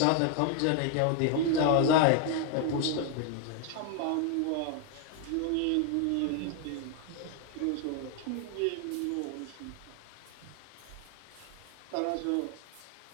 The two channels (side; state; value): both; different; correlation 0.00